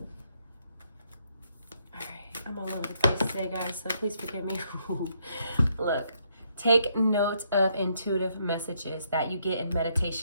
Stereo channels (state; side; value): inverted; both; correlation -0.73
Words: Alright, I'm all over the place today, guys, so please forgive me. Look, take note of intuitive messages that you get in